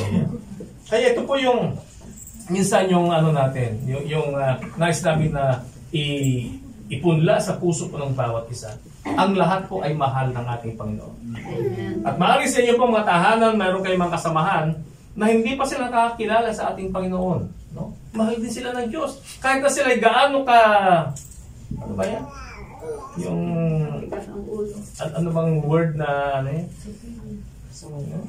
Kaya ito po yung minsan yung natin, yung nais namin na ipunla sa puso po ng bawat isa. Ang lahat po ay mahal ng ating Panginoon. At maaari sa inyo pong mga tahanan, mayroon kayong mga kasamahan na hindi pa sila nakakilala sa ating Panginoon. No? Mahal din sila ng Diyos. Kahit na sila ay gaano ka, ano ba yan? Yung, ano bang word na,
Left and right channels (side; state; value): both; identical; correlation 1.00